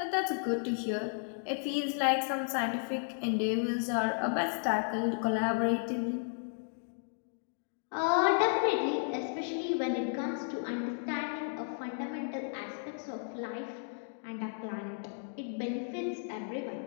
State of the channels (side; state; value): right; silent; digital silence